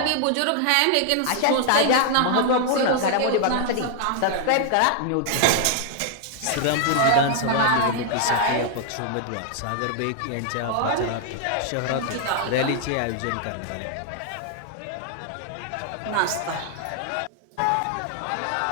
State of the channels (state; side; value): different; both; correlation 0.00